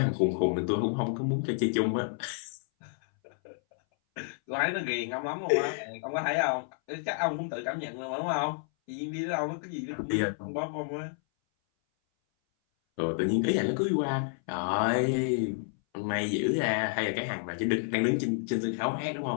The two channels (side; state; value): right; silent; 58 dB below the other